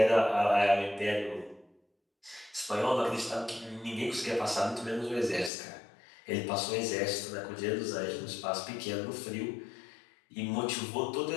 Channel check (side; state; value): right; drops out; at 5.5 s